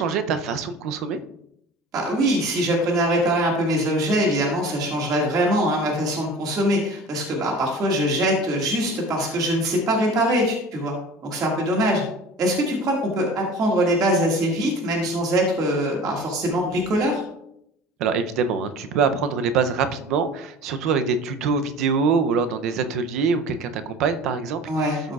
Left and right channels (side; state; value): both; normal; correlation 0.40